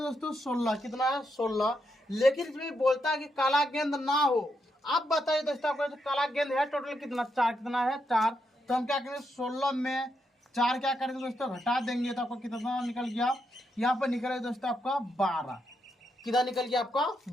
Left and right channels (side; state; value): both; normal; correlation 0.81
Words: 16, कितना है 16, लेकिन इसमें बोलता है कि काला गेंद ना हो। अब बताइए दोस्तों आपको जो काला गेंद है टोटल कितना, 4, कितना है 4, तो हम क्या करेंगे 16 में 4 क्या करेंगे दोस्तों घटा देंगे, तो आपको कितना निकल गया, यहाँ पर निकल गया दोस्तों आपका 12, कितना निकल गया आपका